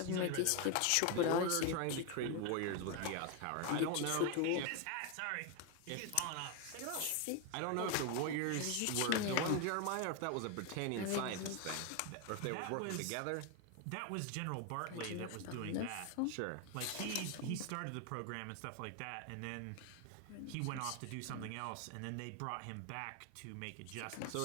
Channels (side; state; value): both; different; correlation 0.01